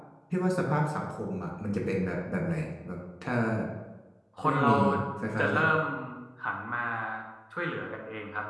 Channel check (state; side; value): identical; both; correlation 1.00